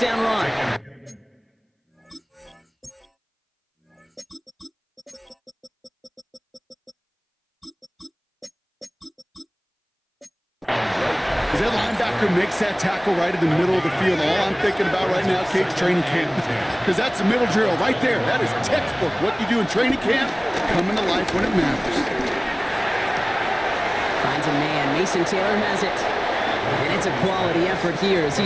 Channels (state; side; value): identical; both; correlation 1.00